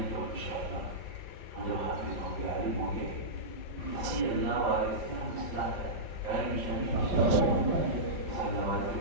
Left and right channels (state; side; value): late; left; 4.6 ms